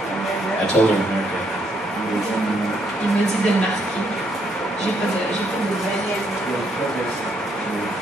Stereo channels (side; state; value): both; normal; correlation 0.73